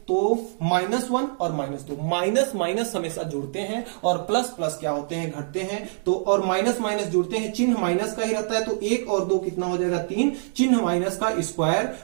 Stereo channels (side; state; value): left; silent; digital silence